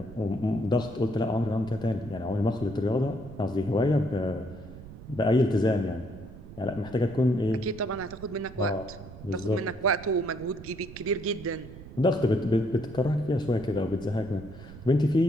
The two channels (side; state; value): right; noise; rumble, 15 dB below the sound